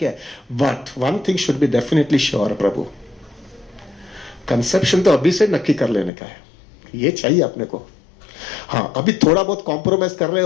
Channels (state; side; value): drops out; right; at 6.1 s